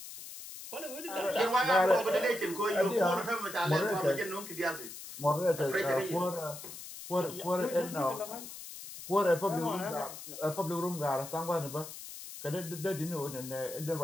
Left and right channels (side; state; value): left; noise; hiss, 12 dB below the sound